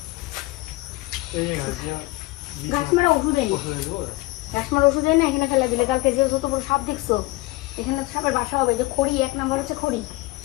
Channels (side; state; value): right; quieter; 20.6 dB